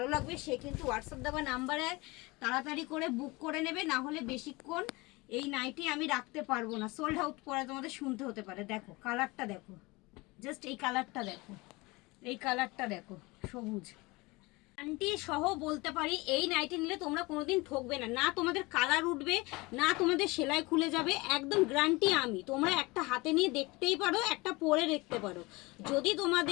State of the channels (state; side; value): quieter; right; 23.7 dB